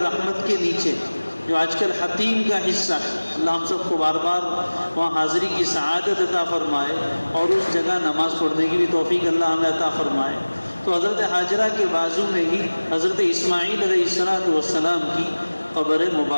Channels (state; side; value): inverted; both; correlation -1.00